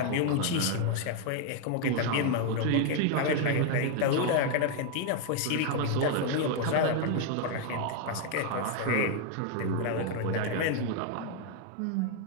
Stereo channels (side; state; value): both; different; correlation 0.01